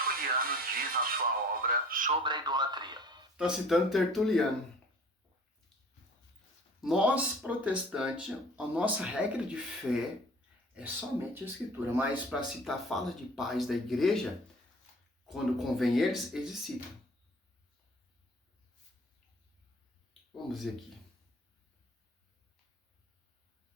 diz na sua obra sobre a idolatria. Está citando Tertuliano. Nós, protestantes, a nossa regra de fé é somente a Escritura, mas para citar falas de pais da igreja, quando convém eles citam. Vamos ver aqui.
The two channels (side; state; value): both; normal; correlation 0.47